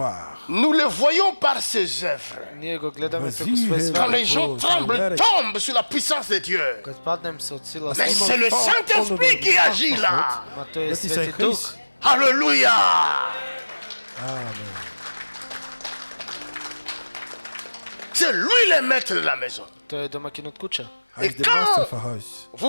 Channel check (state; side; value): inverted; both; correlation -1.00